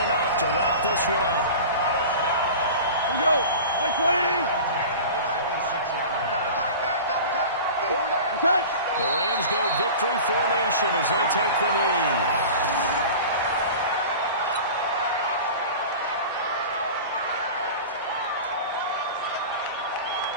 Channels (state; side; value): inverted; both; correlation -0.36